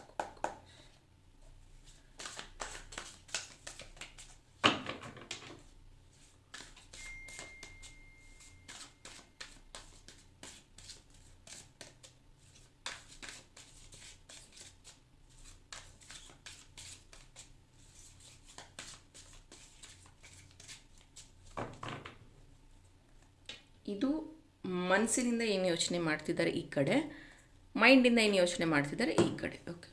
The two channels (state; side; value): identical; both; correlation 1.00